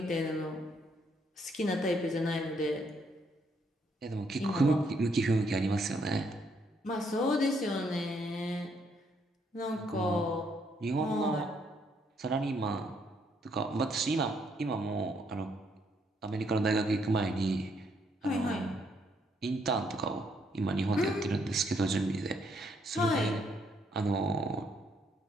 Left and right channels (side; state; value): both; normal; correlation 0.72